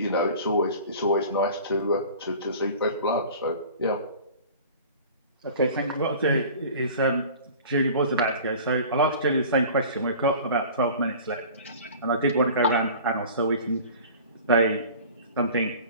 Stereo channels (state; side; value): inverted; both; correlation -0.42